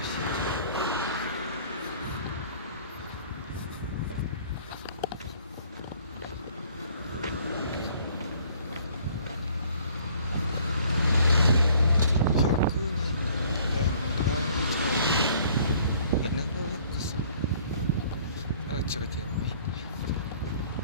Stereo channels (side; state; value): both; inverted; correlation -0.57